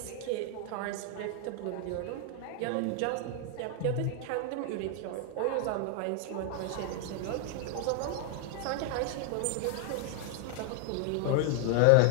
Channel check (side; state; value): both; different; correlation 0.00